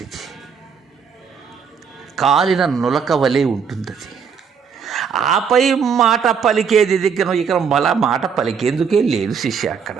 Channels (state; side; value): quieter; left; 6.5 dB